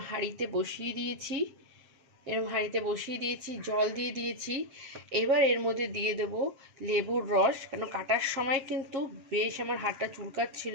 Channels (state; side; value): late; left; 7.5 ms